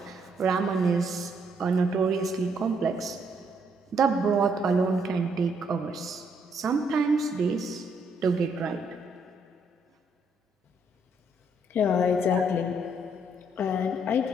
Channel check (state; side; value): normal; both; correlation 0.72